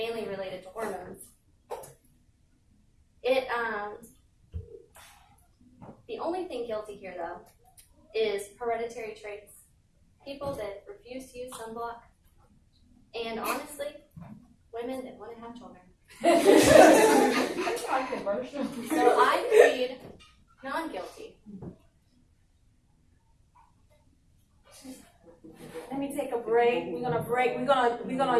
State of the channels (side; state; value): both; identical; correlation 1.00